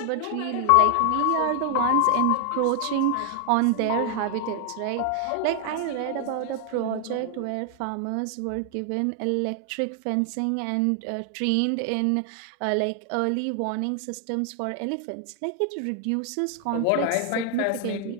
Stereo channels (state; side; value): different; both; correlation 0.00